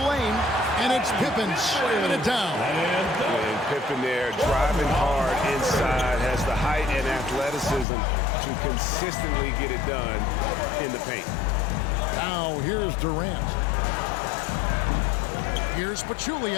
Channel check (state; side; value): drops out; right; at 7.9 s